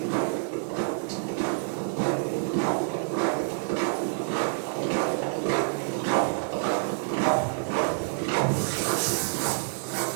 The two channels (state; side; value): silent; left; digital silence